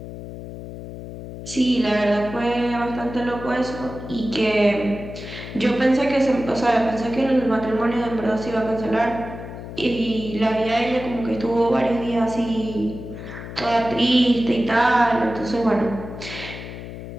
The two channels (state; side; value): noise; left; hum, 11 dB below the sound